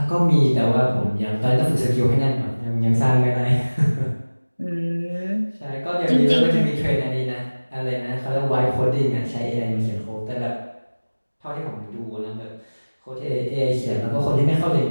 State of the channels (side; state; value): both; inverted; correlation -1.00